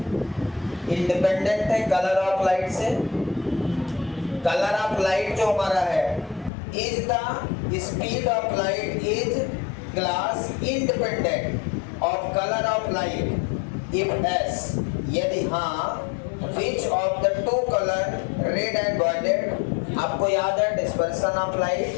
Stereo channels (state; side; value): drops out; right; at 6.5 s